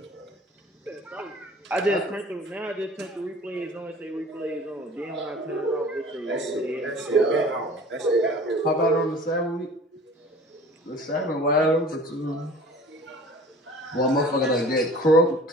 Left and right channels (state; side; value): normal; both; correlation 0.45